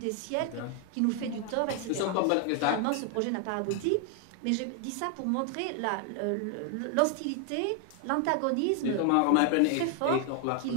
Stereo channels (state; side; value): different; both; correlation 0.00